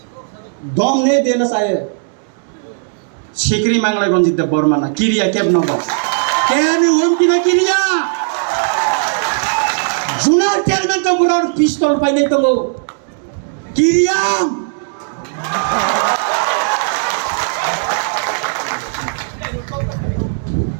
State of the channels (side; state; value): left; silent; digital silence